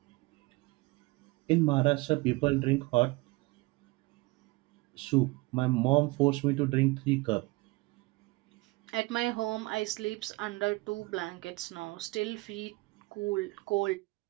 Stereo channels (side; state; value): left; quieter; 23.2 dB